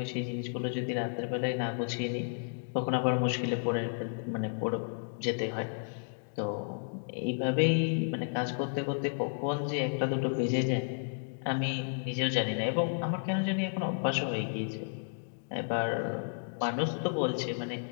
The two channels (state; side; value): silent; right; digital silence